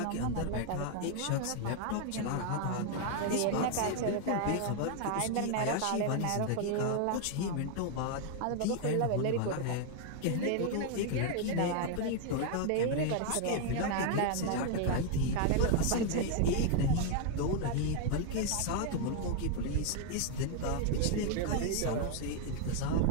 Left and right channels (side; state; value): both; different; correlation 0.00